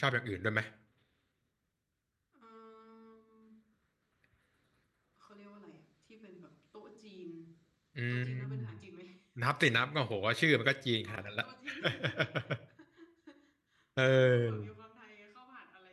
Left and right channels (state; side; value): identical; both; correlation 1.00